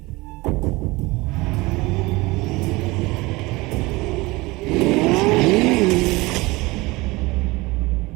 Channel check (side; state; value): left; quieter; 22.4 dB